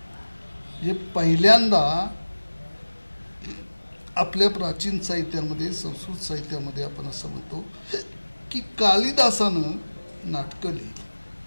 म्हणजे पहिल्यांदा आपल्या प्राचीन साहित्यामध्ये, संस्कृत साहित्यामध्ये आपण असं म्हणतो की कालिदासानं नाटकं लिहिली,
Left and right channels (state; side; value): inverted; both; correlation -1.00